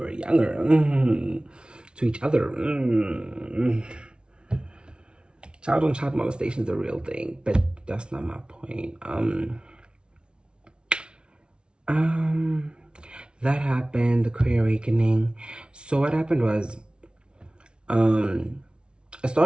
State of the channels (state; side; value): late; left; 0.056 ms